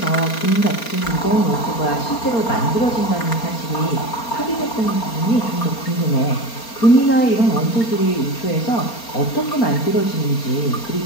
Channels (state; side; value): late; right; 4.3 ms